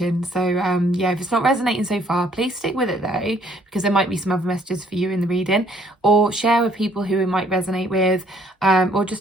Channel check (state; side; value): normal; both; correlation 0.63